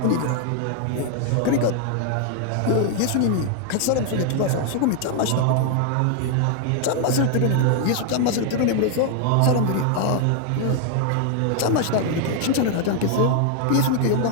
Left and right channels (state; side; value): different; both; correlation 0.00